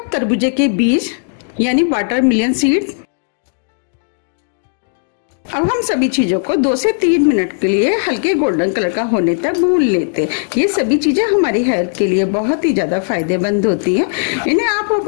तरबूजे के बीज यानी वाटरमेलन सीड। अब हम सभी चीजों को 2 से 3 मिनट के लिए हल्के गोल्डन कलर का होने तक भून लेते हैं। ये सभी चीजें हमारी हेल्थ के लिए बहुत ही ज्यादा फायदेमंद होती हैं। इन्हें आप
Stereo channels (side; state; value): right; silent; digital silence